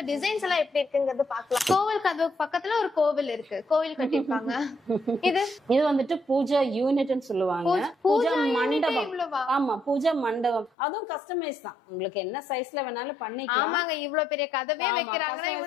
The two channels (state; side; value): drops out; right; at 10.7 s